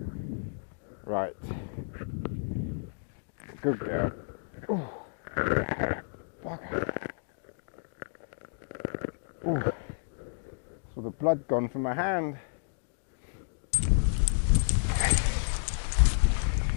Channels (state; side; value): silent; right; digital silence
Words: Right. Good girl. Ooh. Bugger. Ooh. Saw the blood gone from my hand.